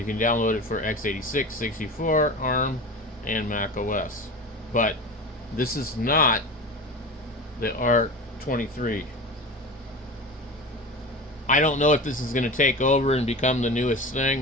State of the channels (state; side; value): normal; both; correlation 0.31